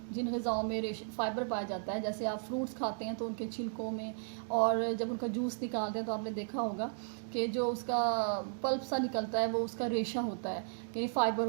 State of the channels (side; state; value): left; silent; digital silence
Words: जिन ग़िज़ाओं में फ़ाइबर पाया जाता है, जैसे आप फ्रूट्स खाते हैं तो उनके छिलकों में, और जब उनका जूस निकालते हैं तो आपने देखा होगा कि जो उसका पल्प सा निकलता है वो उसका रेशा होता है, यानी फ़ाइबर